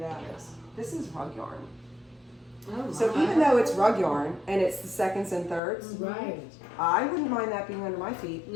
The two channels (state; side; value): drops out; right; at 5.6 s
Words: is. This is rug yarn. Oh, So my. even though it's rug yarn and it's the seconds and thirds, Right. I wouldn't mind that being under my feet.